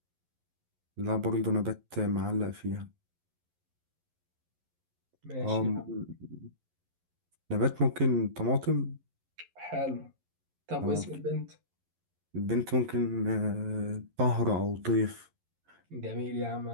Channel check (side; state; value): left; late; 11 ms